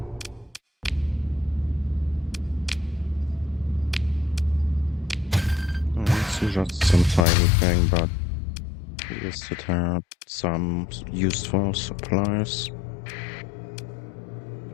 It's just some tiny thing, but at least it had some useful supplies,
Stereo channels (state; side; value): drops out; right; at 7.2 s